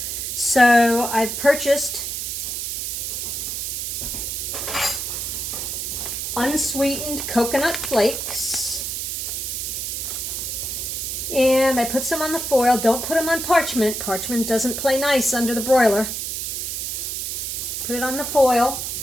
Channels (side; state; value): right; noise; hiss, 3 dB below the sound